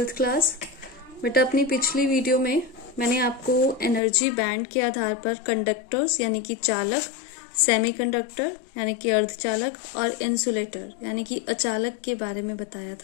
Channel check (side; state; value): right; drops out; at 4.0 s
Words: class. बेटा अपनी पिछली वीडियो में मैंने आपको एनर्जी बैंड के आधार पर कंडक्टर्स यानी कि चालक, सेमीकंडक्टर यानी कि अर्धचालक और इंसुलेटर यानी कि अचालक के बारे में बताया